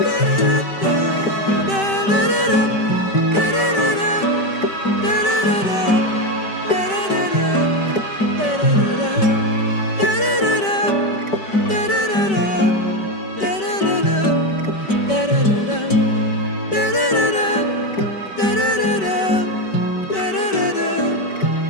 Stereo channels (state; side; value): late; right; 5.2 ms